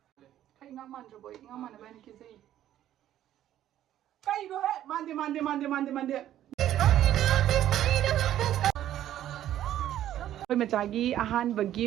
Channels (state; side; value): quieter; left; 12.1 dB